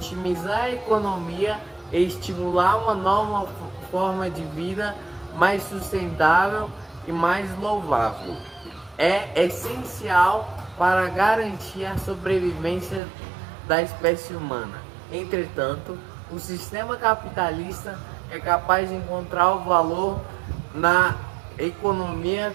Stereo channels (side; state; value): left; drops out; at 13.0 s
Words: a economia e estimular uma nova forma de vida mais sustentável e mais louvável é essencial para garantir a sobrevivência da espécie humana. Entretanto, o sistema capitalista é capaz de encontrar o valor na economia